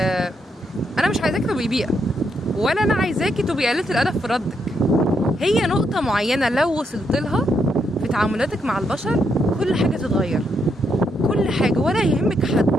انا مش عايزاكي تبقي بيئه، ولا انا عايزاكي تبقي قليله الادب في ردك. هي نقطه معينه لو وصلت لها في تعاملاتك مع البشر كل حاجه تتغير، كل حاجه، ولا يهمك حد،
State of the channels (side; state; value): both; normal; correlation 0.78